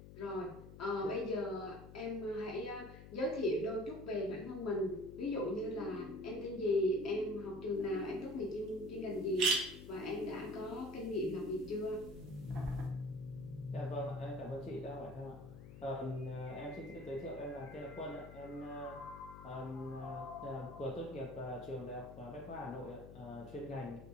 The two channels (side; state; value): left; noise; hum, 14 dB below the sound